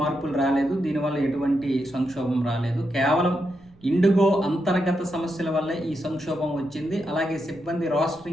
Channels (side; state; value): right; noise; rumble, 27 dB below the sound